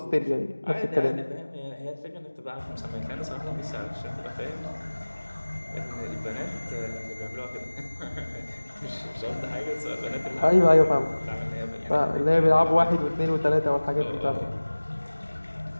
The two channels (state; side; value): inverted; both; correlation -1.00